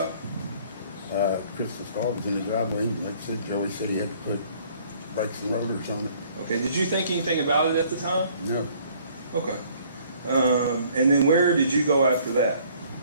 Crystal's car was in the driveway, and like I said, Joey said he had to put brakes and rotors on it. Okay. Did you think anything about it at the time? No, Okay. And then where did you go after that?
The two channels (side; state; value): both; inverted; correlation -0.59